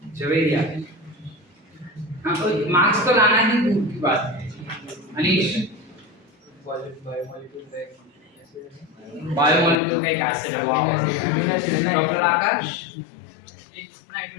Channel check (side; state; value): right; drops out; at 9.8 s